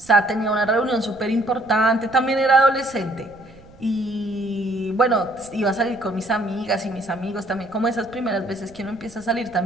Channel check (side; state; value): right; noise; rumble, 23 dB below the sound